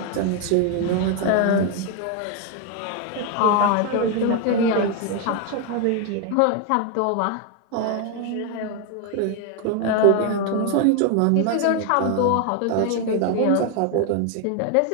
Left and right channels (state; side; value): different; both; correlation 0.01